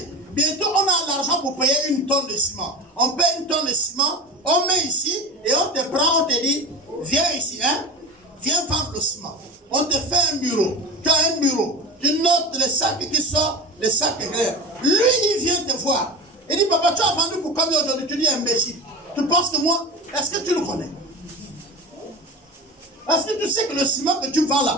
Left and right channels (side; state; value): both; normal; correlation 0.29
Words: Bientôt on a l'argent pour payer 1 tonne de ciment. On paye 1 tonne de ciment, on met ici et on te prend, on te dit, viens ici, hein, viens vendre le ciment. On te fait un bureau, tu as un bureau, tu notes les sacs qui sortent, les sacs clairs. Lui il vient te voir. Il dit, papa, tu as vendu pour combien aujourd'hui? Tu dis, imbécile. Tu penses que moi, est-ce que tu le connais? Est-ce que tu sais que le ciment que tu vends